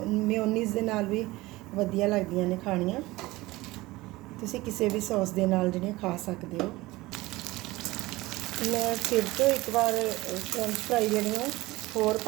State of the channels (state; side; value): quieter; left; 19.8 dB